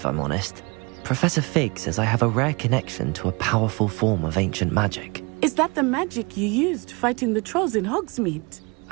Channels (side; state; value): left; quieter; 28.1 dB